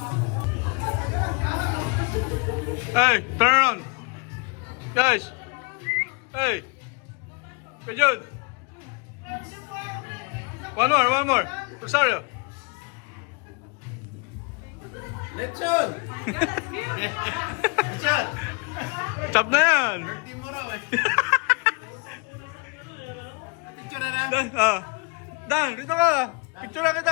Hey, turn around. Guys. Hey. Good Jude. One more. Rosario. Lechon! Lechon! Chop na yan. Birthday mo raw eh. Picture na na. Dan, dito ka. Picture na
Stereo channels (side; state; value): right; quieter; 31.7 dB